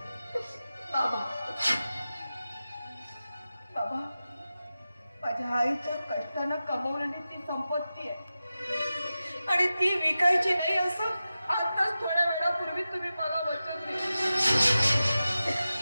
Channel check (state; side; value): inverted; both; correlation -0.93